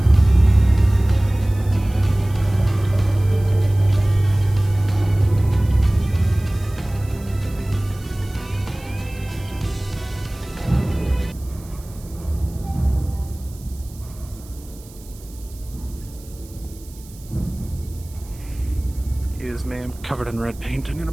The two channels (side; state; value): right; noise; hiss, 22 dB below the sound